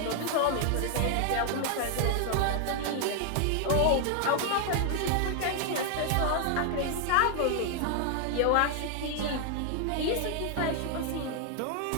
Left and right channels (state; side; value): different; both; correlation 0.00